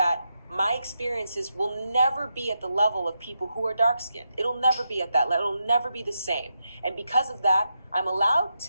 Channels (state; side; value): inverted; both; correlation -0.85